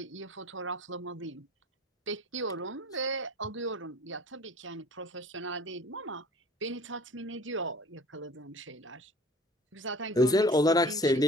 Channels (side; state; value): both; normal; correlation 0.46